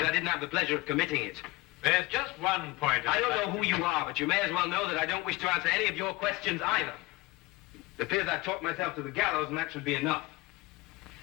I didn't have the pleasure of committing it. There's just one point. I don't know who you are, but you may as well know that I don't wish to answer any of your questions either. It appears I've talked myself to the gallows, and that should be enough.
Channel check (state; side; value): quieter; right; 21.7 dB